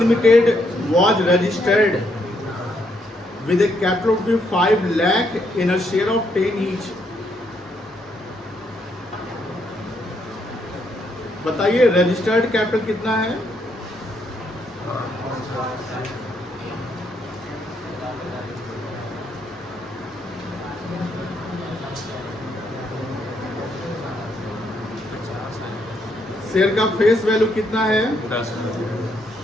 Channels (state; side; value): normal; both; correlation 0.75